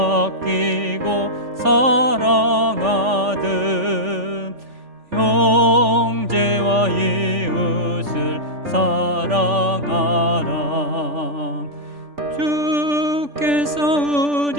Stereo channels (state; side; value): late; left; 3.4 ms